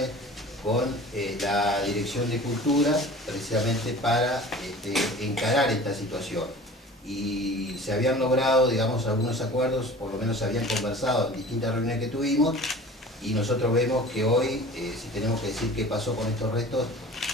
con la Dirección de Cultura, precisamente para encarar esta situación. Y se habían logrado, digamos, algunos acuerdos, por lo menos se habían conversado en distintas reuniones que tuvimos, y nosotros vemos que hoy, si tenemos que decir qué pasó con estos restos,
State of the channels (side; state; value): both; normal; correlation 0.42